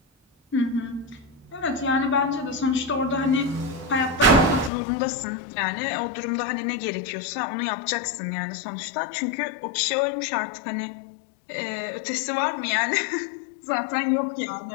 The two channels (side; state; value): right; drops out; at 4.7 s